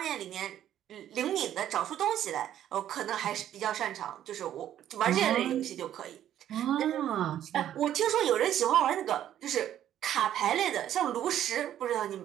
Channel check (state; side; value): quieter; left; 11.2 dB